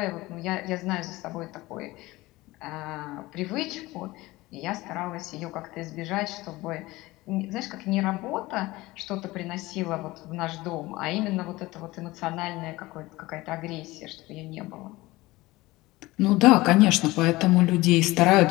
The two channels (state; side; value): quieter; right; 19.9 dB